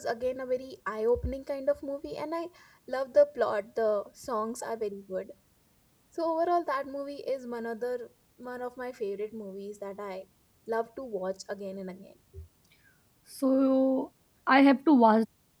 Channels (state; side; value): identical; both; correlation 1.00